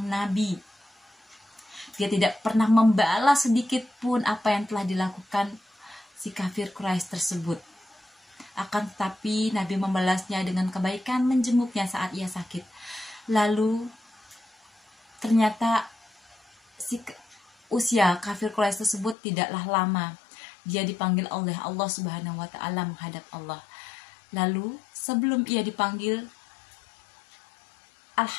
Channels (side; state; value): right; drops out; at 19.2 s